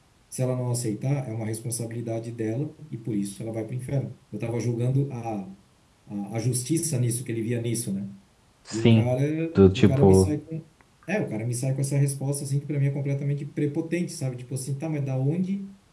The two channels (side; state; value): both; identical; correlation 1.00